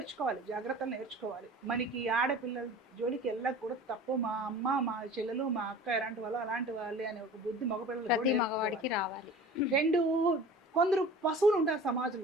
జాగ్రత్తలు నేర్చుకోవాలి. మనకి ఆడపిల్లల జోలికి వెళ్ళకూడదు, తప్పు, మా అమ్మ మా చెల్లెలు మా అక్క ఎలాంటి వాళ్ళు అలాంటి వాళ్ళే అనే ఒక బుద్ధి మగవాడికి రావాలి. 2, కొందరు పశువులు ఉంటారు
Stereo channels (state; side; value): normal; both; correlation 0.41